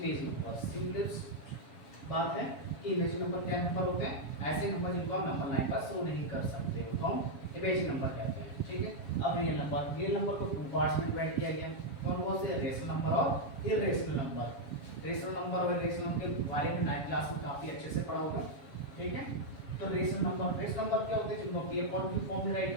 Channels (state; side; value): late; right; 7.3 ms